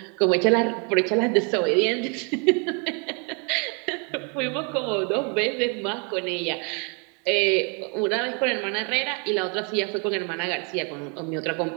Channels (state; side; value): quieter; left; 35.7 dB